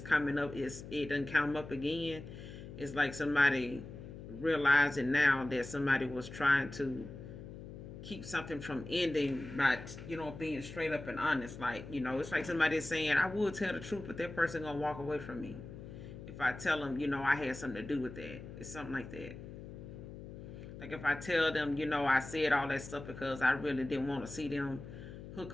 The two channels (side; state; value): left; noise; hum, 12 dB below the sound